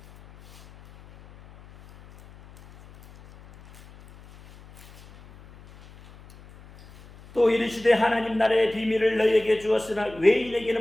또 이르시되 하나님 나라의 비밀을 너희에게 주었으나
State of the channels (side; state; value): left; noise; hum, 23 dB below the sound